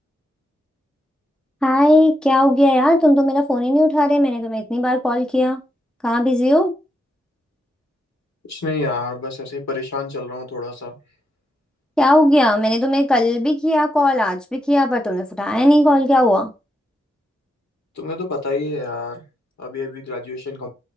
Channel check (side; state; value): both; normal; correlation 0.84